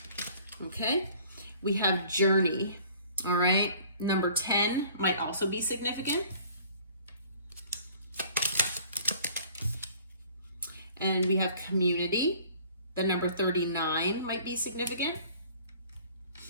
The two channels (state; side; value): inverted; both; correlation -0.52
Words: Okay. We have Journey, all right? Number 10 might also be significant. And we have Community. The number 39 might be significant.